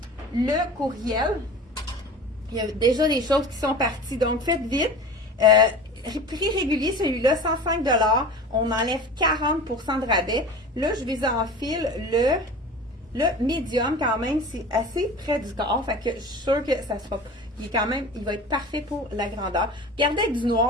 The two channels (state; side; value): normal; both; correlation 0.36